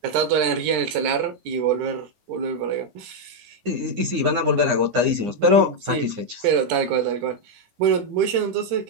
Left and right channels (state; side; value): late; left; 9.8 ms